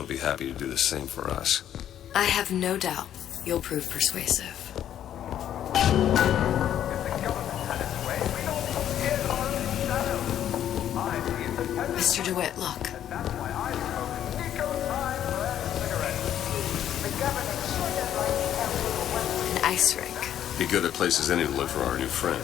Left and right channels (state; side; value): quieter; right; 10.7 dB